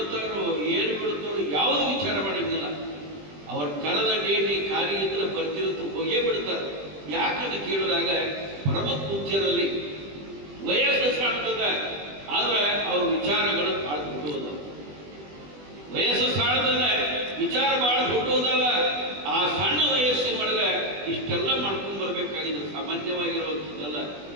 ಏನು ಬಿಡ್ತಾರೋ ಯಾವುದು ವಿಚಾರ ಮಾಡಂಗಿಲ್ಲ. ಅವ್ರ ಕರೆದ ಡೇಟಿ ಕಾರ್ಯ ಇದ್ರೆ ಬರ್ತಿರುತ್ತೆ, ಹೋಗೇ ಬಿಡ್ತಾರೆ. ಯಾಕಂತ ಕೇಳಿದಾಗ ಪರಮ ಪೂಜ್ಯರಲ್ಲಿ ವಯಸ್ಸು ಸಾಣ್ತದ, ಆದ್ರೆ ಅವ್ರ ವಿಚಾರಗಳು ಭಾಳ ದೊಡ್ಡದ. ವಯಸ್ಸು ಸಾಣದಲ್ಲ, ವಿಚಾರ ಭಾಳ ದೊಡ್ಡದಲ್ಲ. ಆ ಸಣ್ಣ ವಯಸ್ಸಿನೊಳಗೆ ಇಷ್ಟೆಲ್ಲ ಮಾಡ್ಕೊಂಡು ಬರ್ಬೇಕಾಗಿದ್ರೆ ಸಾಮಾನ್ಯವಾಗಿರುವಂಥದ್ದಲ್ಲ.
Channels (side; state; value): left; late; 20 ms